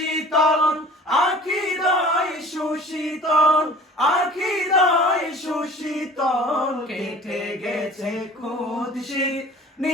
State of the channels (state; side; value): normal; both; correlation 0.45